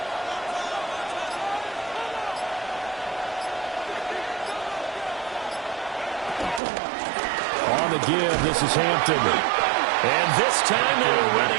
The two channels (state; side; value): drops out; left; at 6.6 s